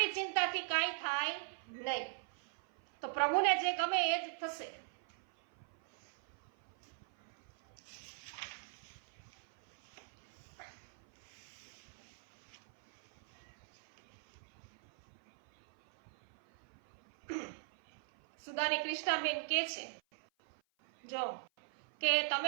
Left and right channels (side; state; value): left; silent; 50 dB below the other